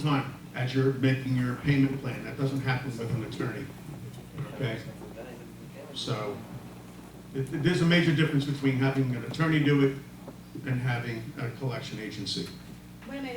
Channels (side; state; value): both; identical; correlation 1.00